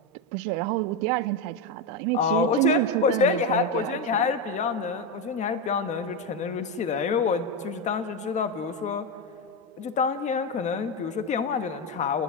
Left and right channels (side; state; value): both; normal; correlation 0.11